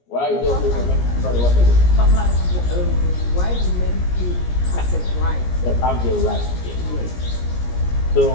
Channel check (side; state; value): right; late; 17 ms